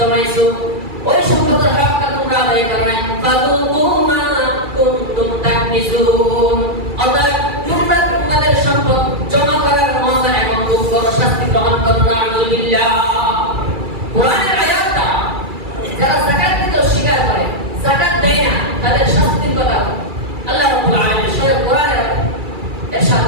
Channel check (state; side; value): late; left; 2.3 ms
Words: ওই সম্পদের হকটা তোমরা আদায় করো নাই। ফাযুকু মা কুনতুম তাকনিজুন। অতএব তোমরা তোমাদের সম্পদ জমা করার মজা এখন খুব বড় শাস্তি গ্রহণ করো। নাউযুবিল্লাহ। কোরআনের আয়াতটা যারা যাকাত দিতে অস্বীকার করে, যাকাত দেয় না, তাদের শাস্তির কথা আল্লাহ রাব্বুল আলামিন স্বয়ং কোরআনে ইরশাদ